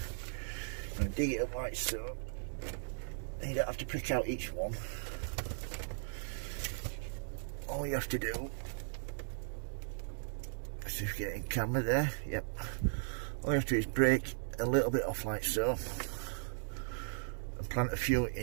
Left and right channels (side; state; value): left; silent; digital silence